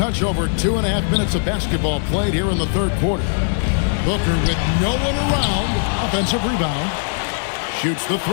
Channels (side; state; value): right; silent; digital silence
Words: over 2.5 minutes of basketball played here in the third quarter. Booker with no one around, offensive rebound, shoots the